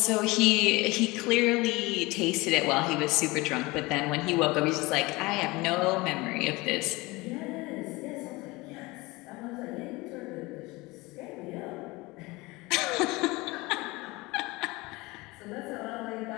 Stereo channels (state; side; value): quieter; right; 22.8 dB